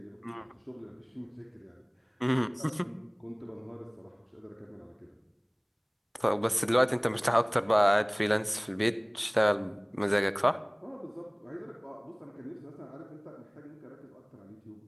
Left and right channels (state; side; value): identical; both; correlation 1.00